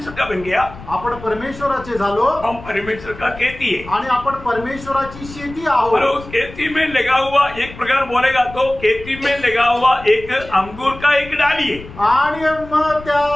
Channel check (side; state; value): left; noise; rumble, 16 dB below the sound